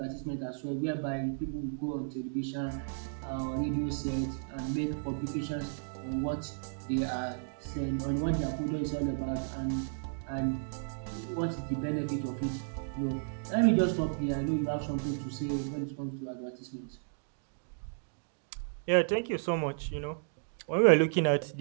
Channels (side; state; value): left; silent; digital silence